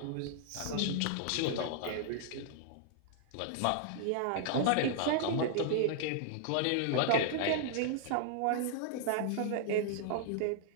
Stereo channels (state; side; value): different; both; correlation -0.01